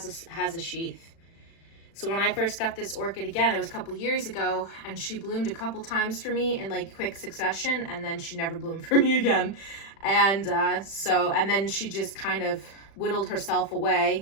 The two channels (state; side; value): late; right; 36 ms